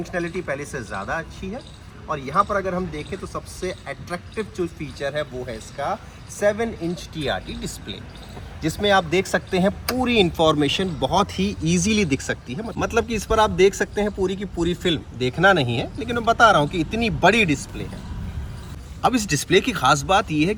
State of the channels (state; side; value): identical; both; correlation 1.00